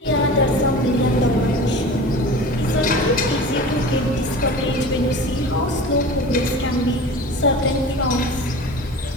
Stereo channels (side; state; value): both; normal; correlation 0.36